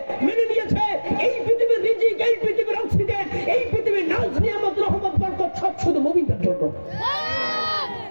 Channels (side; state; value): both; inverted; correlation -1.00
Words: মেনে নিয়েছে। এই পৃথিবীর রিজিক, এই পৃথিবীর অক্সিজেন, এই পৃথিবীর নাজ নিয়ামত রহমত বরকত সব শুধু মুমিনদের জন্য।